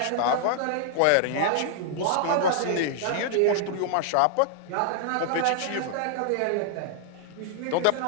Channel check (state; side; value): different; both; correlation -0.01